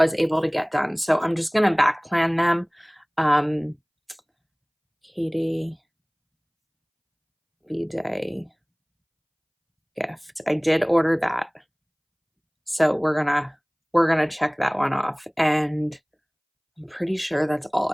able to get done, so I'm just gonna back plan them. Katie B-Day gift. I did order that. So we're gonna check that one off. And I'm pretty sure that's all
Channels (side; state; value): both; identical; correlation 1.00